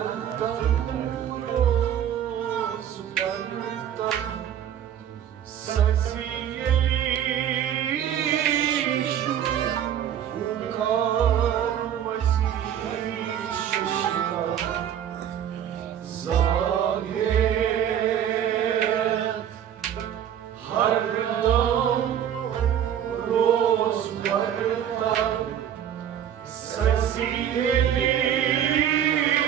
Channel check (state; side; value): quieter; left; 9.8 dB